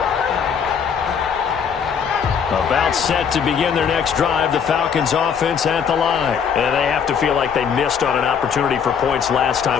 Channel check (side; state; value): right; quieter; 7.1 dB